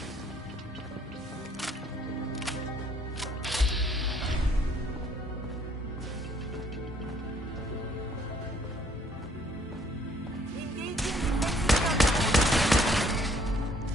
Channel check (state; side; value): normal; both; correlation 0.63